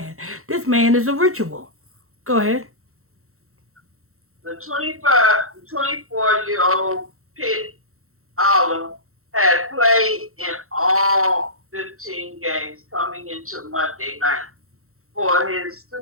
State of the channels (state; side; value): late; left; 0.63 ms